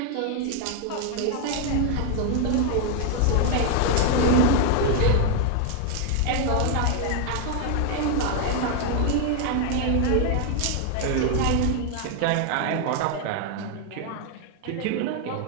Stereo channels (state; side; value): different; both; correlation 0.01